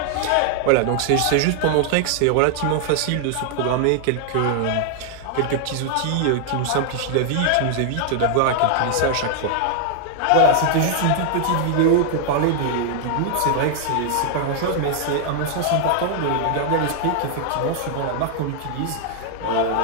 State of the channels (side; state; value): both; different; correlation 0.00